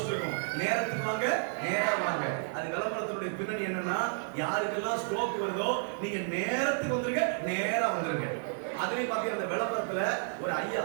இருக்கும், நேரத்துக்கு வாங்க, நேரா வாங்க. அது விளம்பரத்தினுடைய பின்னணி என்னன்னா, யாருக்கெல்லாம் ஸ்ட்ரோக் வருதோ நீங்க நேரத்துக்கு வந்துருங்க, நேரா வந்துருங்க. அதுலயும் பாத்தீங்கன்னா அந்த விளம்பரத்துல ஒரு ஐயா,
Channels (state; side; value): silent; left; 57 dB below the other